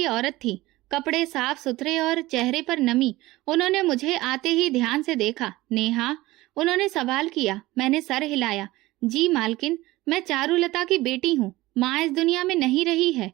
औरत थी, कपड़े साफ सुथरे और चेहरे पर नमी। उन्होंने मुझे आते ही ध्यान से देखा। नेहा, उन्होंने सवाल किया। मैंने सर हिलाया। जी मालकिन, मैं चारुलता की बेटी हूँ। माँ इस दुनिया में नहीं रही है।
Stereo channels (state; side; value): quieter; left; 18.7 dB